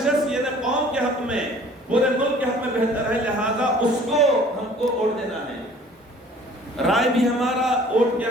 شخص یہ قوم کے حق میں، پورے ملک کے حق میں بہتر ہے، لہذا اس کو ہم کو ووٹ دینا ہے۔ رائے بھی ہمارا ووٹ کیا،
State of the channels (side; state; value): both; normal; correlation 0.51